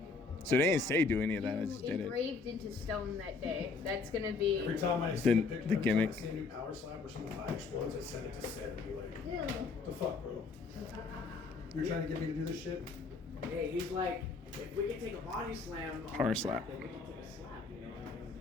So they didn't say do any of that. I just you did it. engraved into stone that day. That's gonna be. Every time I see The- a picture, the gimmick. I see a new power slap or some fire explodes, I send it to Sid and be like, what the fuck, bro? You're trying to get me to do this shit? Hey, he's like, if we can take a body slam, on Power the slap. then we can take a slap, you know?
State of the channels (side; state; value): right; quieter; 4.3 dB